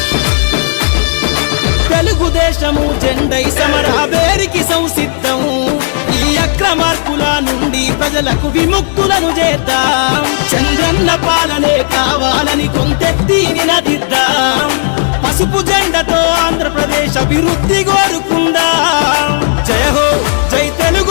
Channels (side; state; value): right; silent; digital silence